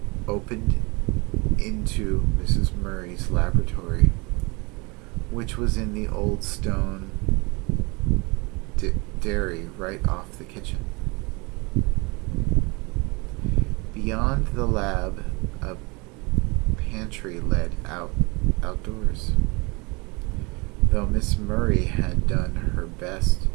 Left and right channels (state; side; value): quieter; left; 27.4 dB